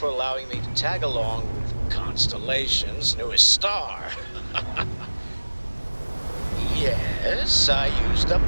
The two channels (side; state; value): both; inverted; correlation -1.00